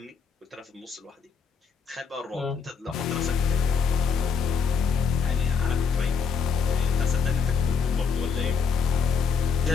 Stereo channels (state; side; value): quieter; right; 6.1 dB